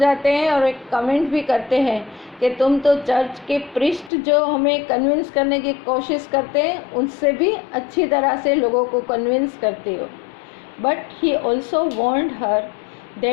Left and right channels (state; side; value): drops out; right; at 4.1 s